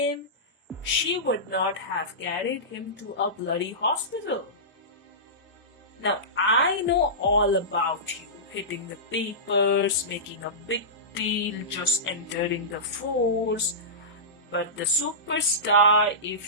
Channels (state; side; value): normal; both; correlation -0.19